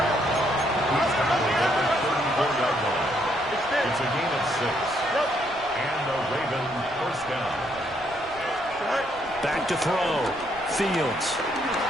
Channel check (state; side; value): noise; right; rumble, 21 dB below the sound